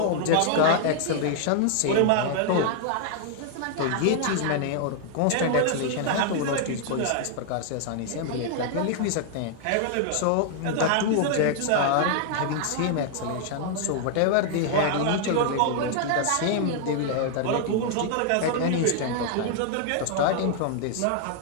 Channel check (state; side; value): different; both; correlation 0.00